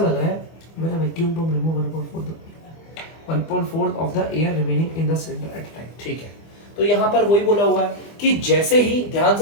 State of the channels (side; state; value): right; late; 25 ms